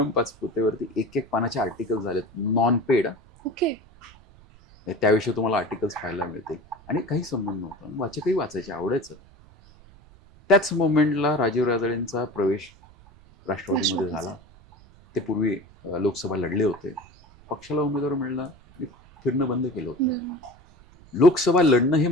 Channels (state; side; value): noise; right; rumble, 25 dB below the sound